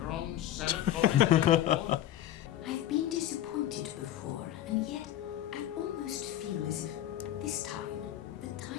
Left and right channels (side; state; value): right; quieter; 12.3 dB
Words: own Senate voting war? I've been disappointed before, and yet I almost feel as if this time the